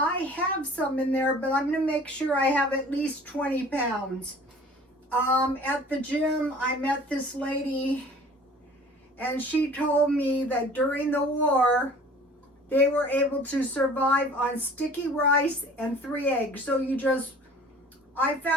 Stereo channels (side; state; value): both; normal; correlation 0.47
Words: have some in there, but I'm going to make sure I have at least 20 pounds. At the gym, I met this lady, and she told me that during the war, they were able to survive on sticky rice and 3 eggs. So I